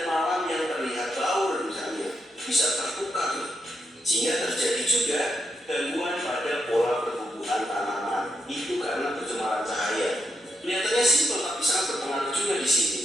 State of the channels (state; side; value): normal; both; correlation 0.82